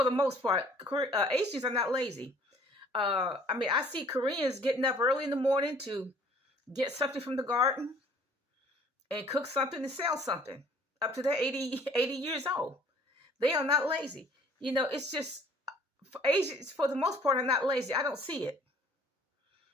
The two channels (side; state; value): both; normal; correlation 0.55